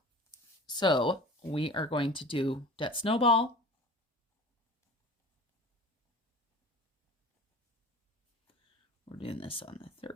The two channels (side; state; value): both; normal; correlation 0.39